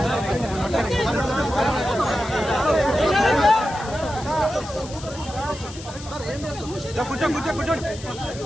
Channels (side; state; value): left; noise; hiss, 15 dB below the sound